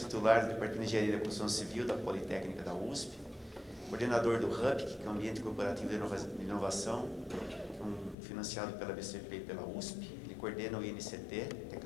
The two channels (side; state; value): right; drops out; at 8.2 s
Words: do Departamento de Engenharia da Construção Civil da Politécnica da USP, coordenador do HUB, que é o Ambiente Corporativo de Inovação, um financiado pela BCP e pela USP. Ele coordena o INCT,